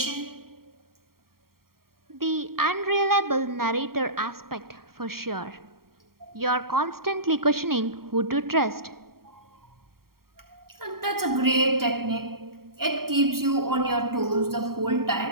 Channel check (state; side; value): late; left; 0.93 ms